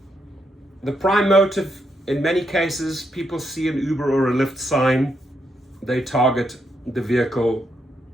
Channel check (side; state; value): both; normal; correlation 0.80